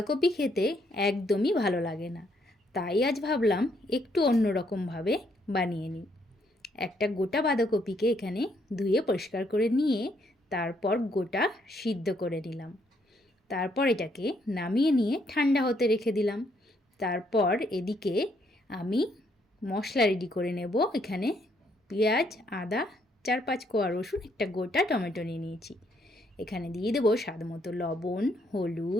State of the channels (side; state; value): both; normal; correlation 0.72